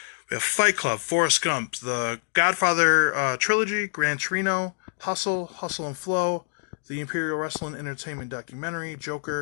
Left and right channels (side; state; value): right; silent; digital silence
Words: We have Fight Club, Forrest Gump, The Godfather Trilogy, Gran Torino, Hustle and Flow, The Imperial Wrestling Entertainment Documentary,